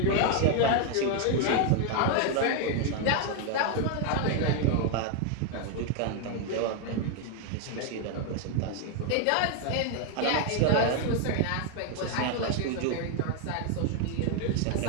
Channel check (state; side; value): different; both; correlation 0.00